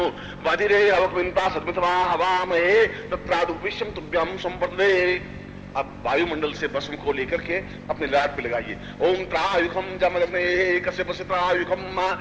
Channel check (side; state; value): both; identical; correlation 1.00